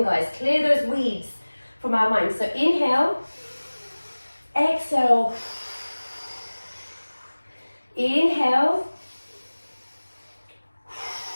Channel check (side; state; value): both; inverted; correlation -1.00